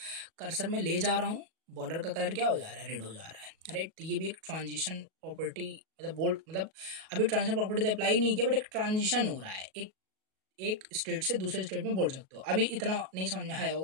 कर्सर में ले जा रहा हूँ, बॉर्डर का कलर क्या हो जा रहा है, रेड हो जा रहा है, राइट। तो ये भी एक ट्रांजिशन प्रॉपर्टी, मतलब बोल्ड, मतलब अभी ट्रांजिशन प्रॉपर्टी तो अप्लाई नहीं किया, बट एक ट्रांजिशन हो रहा है, एक स्टेट से दूसरे स्टेट में बोल सकते हो। अभी इतना नहीं समझ में आया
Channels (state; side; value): late; left; 37 ms